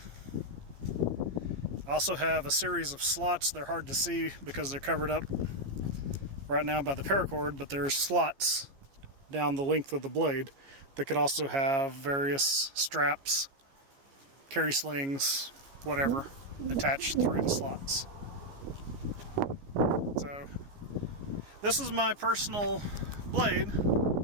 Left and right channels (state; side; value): late; left; 15 ms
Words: I also have a series of slots. They're hard to see because they're covered up right now by the paracord, but there's slots down the length of the blade that could also have various straps, carry slings, whatever, attached through the slots. So this is my personal blade.